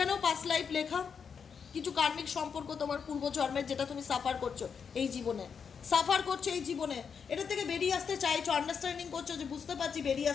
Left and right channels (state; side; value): quieter; right; 6.5 dB